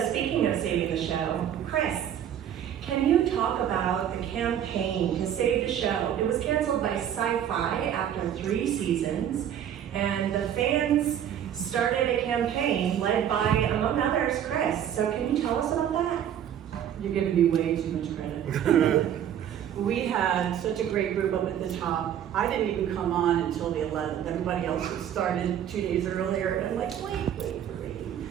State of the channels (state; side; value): quieter; left; 9.9 dB